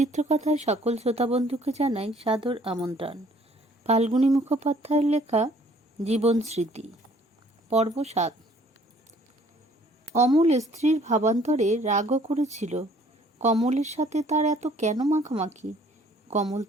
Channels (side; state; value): both; normal; correlation 0.59